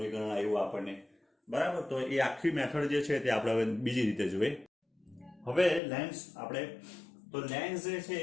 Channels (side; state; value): right; drops out; at 5.8 s